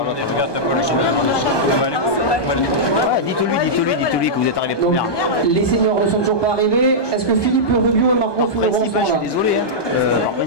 t'as pas le chemin. Dites-lui que vous êtes arrivé Donc, première. les seniors ne sont toujours pas arrivés. Est-ce que Philippe Rubio et Margot Fulleron sont Je suis là? désolé. En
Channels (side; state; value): right; late; 1.2 ms